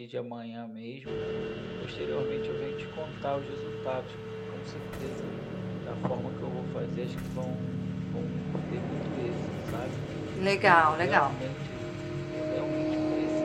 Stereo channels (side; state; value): both; identical; correlation 1.00